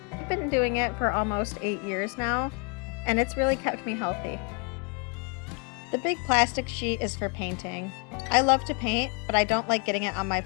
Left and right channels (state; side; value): quieter; right; 35.1 dB